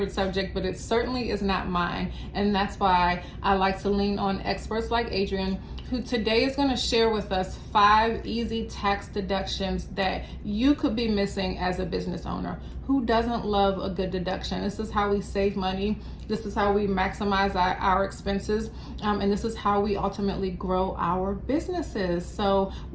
subject, but it certainly is not mine. And that's why I like to lean on experts like Adrienne, who today is going to share with us 5 easy tax deductions that you could be missing as a business owner. Who doesn't love a good deduction? This is how we save money. This is how we maximize our expenses. And this is how we ultimately grow our businesses. So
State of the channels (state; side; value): identical; both; correlation 1.00